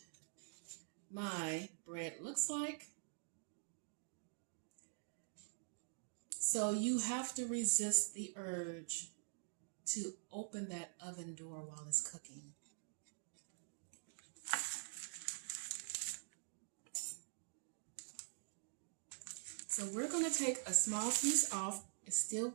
my bread looks like. So you have to resist the urge to open that oven door while it's cooking. So we're going to take a small piece off. It's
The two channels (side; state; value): left; silent; digital silence